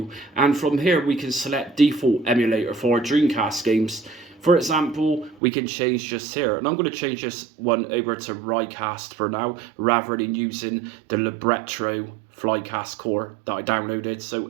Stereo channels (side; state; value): left; drops out; at 5.4 s